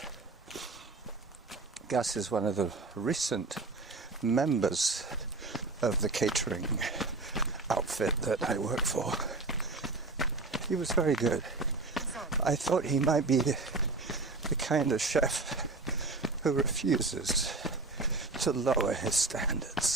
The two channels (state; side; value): quieter; left; 3.5 dB